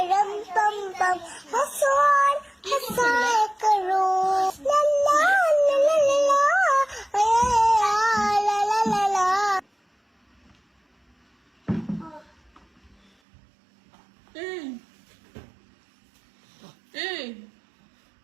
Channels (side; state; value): left; drops out; at 13.1 s